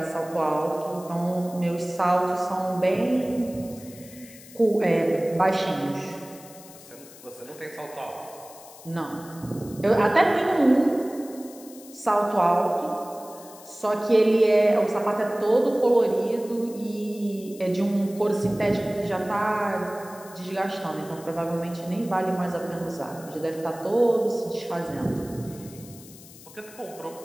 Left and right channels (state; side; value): noise; left; hiss, 19 dB below the sound